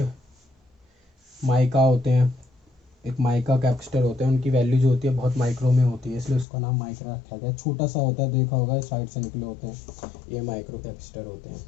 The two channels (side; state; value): right; drops out; at 6.5 s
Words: माइका होते हैं, एक माइका कैपेसिटर होते हैं, उनकी वैल्यू जो होती है बहुत माइक्रो में होती है, इसलिए उसका नाम माइक्रो रखा गया। छोटा सा होता है, देखा होगा साइड से निकले होते हैं, ये माइक्रो कैपेसिटर होते